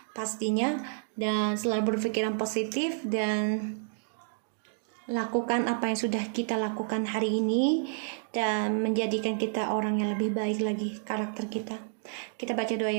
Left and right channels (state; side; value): silent; left; digital silence